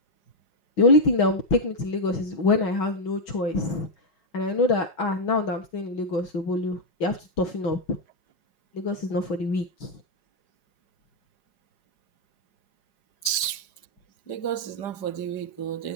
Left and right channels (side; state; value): right; late; 4.9 ms